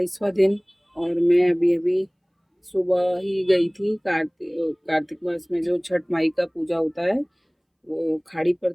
दिन और मैं अभी अभी सुबह ही गई थी कार्तिक मास में जो छठ माई का पूजा होता है वो खाड़ी पर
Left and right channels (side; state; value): both; identical; correlation 1.00